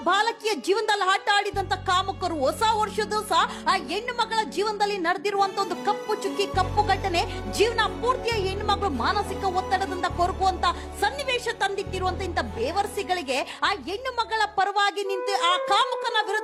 ಬಾಲಕಿಯ ಜೀವನದಲ್ಲಿ ಆಟ ಆಡಿದಂತ ಕಾಮುಕರು ಹೊಸ ವರ್ಷದ ಸಹ ಆ ಹೆಣ್ಣು ಮಗಳ ಜೀವನದಲ್ಲಿ ನಡೆದಿರುವಂತ ಒಂದು ಕಪ್ಪು ಚುಕ್ಕಿ, ಕಪ್ಪು ಘಟನೆ, ಜೀವನ ಪೂರ್ತಿಯ ಹೆಣ್ಣು ಮಗಳು ಮಾನಸಿಕ ಒತ್ತಡದಿಂದ ಕೊರಗುವಂತ ಸನ್ನಿವೇಶ ತಂದಿಟ್ಟಿರುವಂತ ಇಂತ ಬೇವರ್ಸಿಗಳಿಗೆ ಆ ಹೆಣ್ಣು ಮಗಳ ಪರವಾಗಿ ನಿಂತು ಆ ಕಾಮುಕನ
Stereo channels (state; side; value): identical; both; correlation 1.00